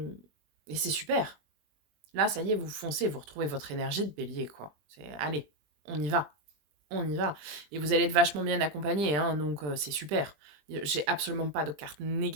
et c'est super. Là, ça y est, vous foncez, vous retrouvez votre énergie de bélier, quoi. Allez, on y va. On y va. Et vous allez être vachement bien accompagné, hein, donc c'est super. J'ai absolument pas de carte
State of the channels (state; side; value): late; left; 20 ms